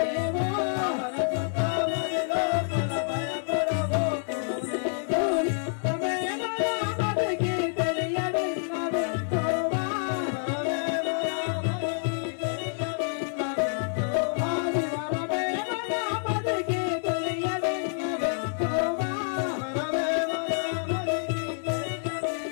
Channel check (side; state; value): right; silent; 59 dB below the other